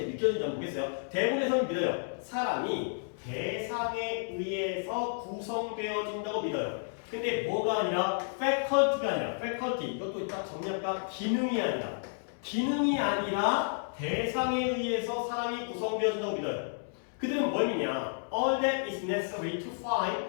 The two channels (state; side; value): silent; right; 57 dB below the other